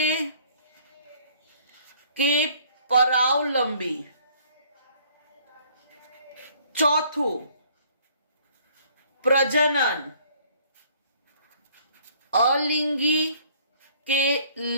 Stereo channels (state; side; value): inverted; both; correlation -0.58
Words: કે પરાવલંબી. ચોથું પ્રજનન અલિંગી કે